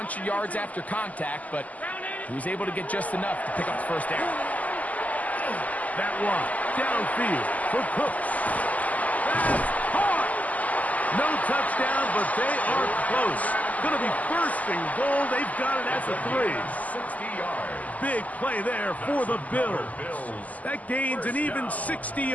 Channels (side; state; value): right; late; 0.076 ms